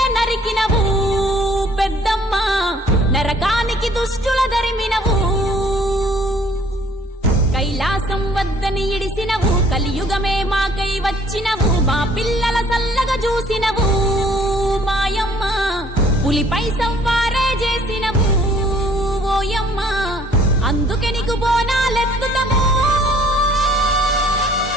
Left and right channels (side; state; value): both; normal; correlation 0.58